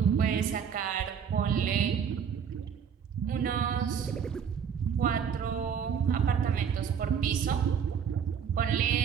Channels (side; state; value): left; quieter; 7.5 dB